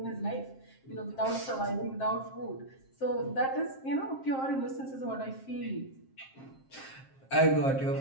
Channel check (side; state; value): right; late; 7.5 ms